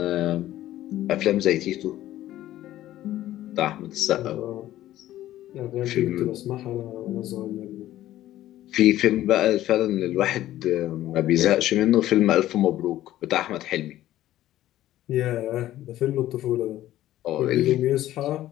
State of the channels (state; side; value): quieter; right; 14.0 dB